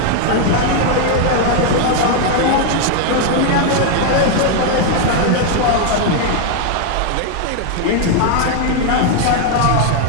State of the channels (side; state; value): both; different; correlation 0.00